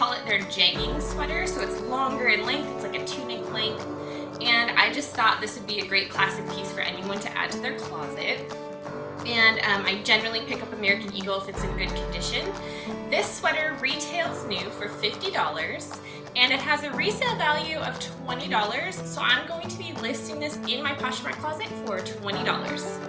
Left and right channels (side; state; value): both; identical; correlation 1.00